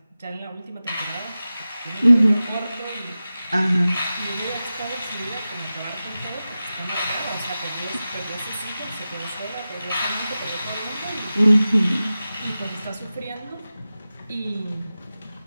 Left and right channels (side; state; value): both; inverted; correlation -0.95